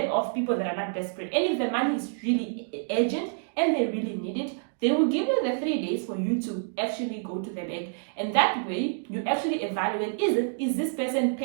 off people that are not desperate. And if the money is really urgent and they really need it, they will give you the 3 days for you to actually go to the bank. And that way you actually evaluate, is this person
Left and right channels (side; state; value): left; silent; digital silence